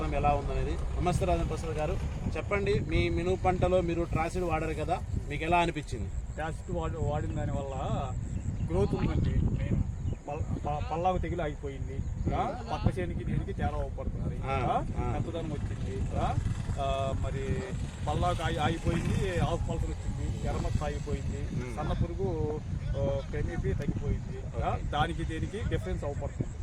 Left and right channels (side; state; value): both; identical; correlation 1.00